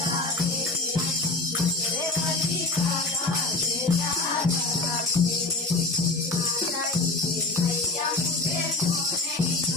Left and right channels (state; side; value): quieter; right; 3.1 dB